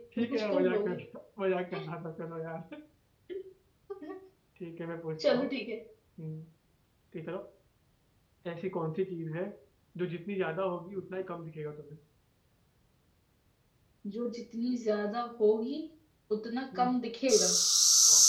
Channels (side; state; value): both; identical; correlation 1.00